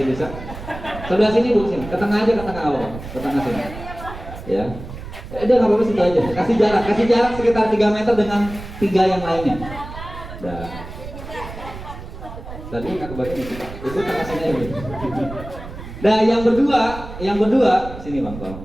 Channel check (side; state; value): right; noise; rumble, 12 dB below the sound